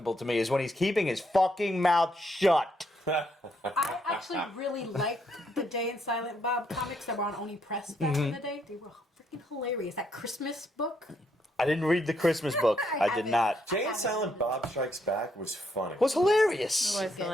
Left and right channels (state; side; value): normal; both; correlation 0.74